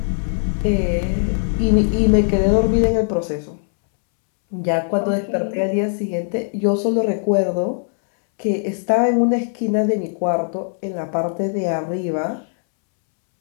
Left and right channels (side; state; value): right; silent; 66 dB below the other